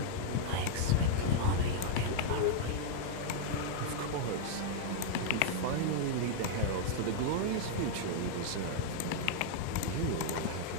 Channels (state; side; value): different; both; correlation -0.01